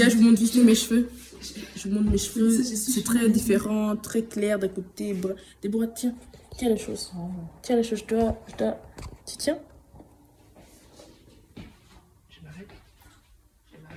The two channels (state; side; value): identical; both; correlation 1.00